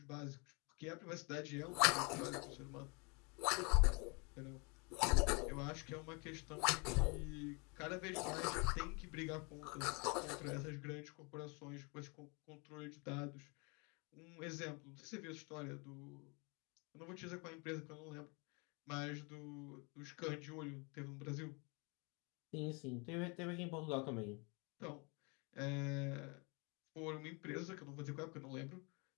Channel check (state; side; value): quieter; right; 31.3 dB